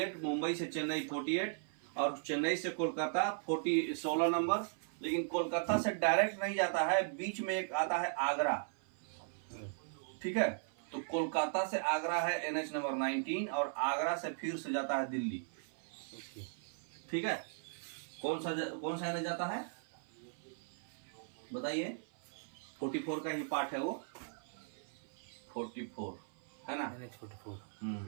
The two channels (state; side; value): silent; left; 52 dB below the other